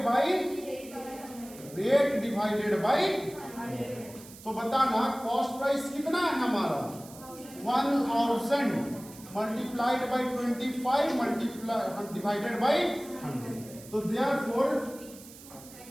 by rate divided by. तो बताना कॉस्ट प्राइस कितना है हमारा, 1000 multiplied by 25 multiply divided by 100। तो देयरफॉर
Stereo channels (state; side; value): noise; right; hiss, 18 dB below the sound